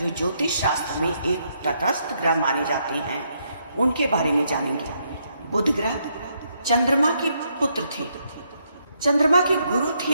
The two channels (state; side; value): inverted; both; correlation -0.76